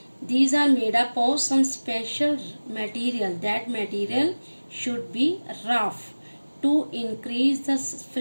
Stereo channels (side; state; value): both; inverted; correlation -1.00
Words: These are made up of some special material. That material should be rough to increase the